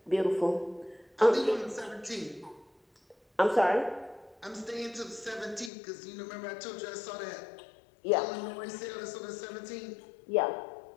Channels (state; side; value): drops out; right; at 5.7 s